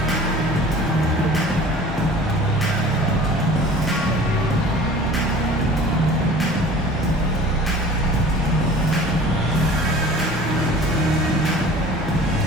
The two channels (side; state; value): both; normal; correlation 0.44